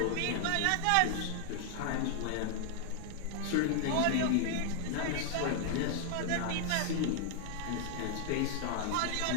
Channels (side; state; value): both; different; correlation 0.00